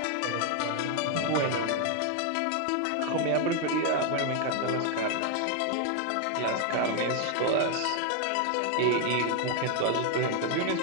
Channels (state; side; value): different; both; correlation 0.00